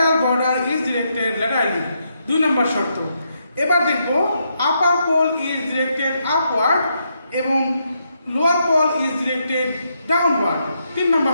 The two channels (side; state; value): both; inverted; correlation -0.79